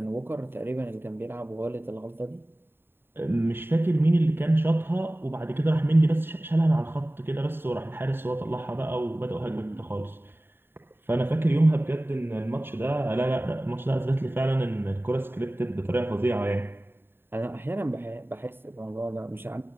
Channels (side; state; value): left; late; 0.11 ms